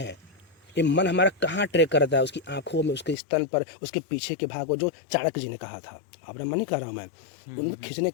ये मन हमारा कहाँ ट्रैक करता है, उसकी आंखों में, उसके स्तन पर, उसके पीछे के भाग को, जो चाणक्य जी ने कहा था, अपना मन नहीं कह रहा हूँ मैं, उनमें खींचने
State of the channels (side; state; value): right; drops out; at 3.2 s